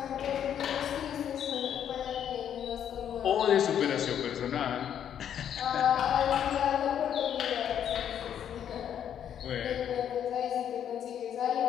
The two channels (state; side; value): quieter; right; 9.4 dB